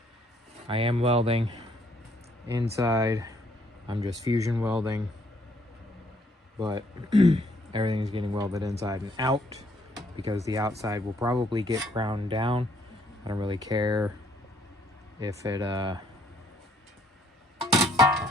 I am welding inside. I'm just fusion welding, but everything's getting welded inside and out because the outside will probably get ground down. I don't really care if it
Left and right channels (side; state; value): both; normal; correlation 0.66